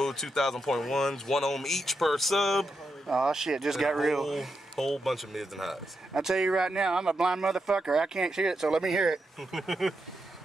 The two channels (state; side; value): normal; both; correlation 0.85